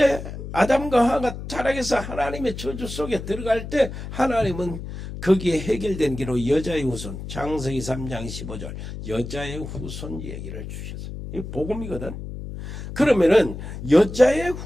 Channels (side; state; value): left; noise; hum, 9 dB below the sound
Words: 아담과 하와가 타락해서 하나님의 저주 속에 들어갈 때 하나님은 거기에 해결된 기로 여자의 후손, 창세기 3장 15절 여자의 후손 얘기를 주셨어요. 이 복음이거든. 그러면은 여자의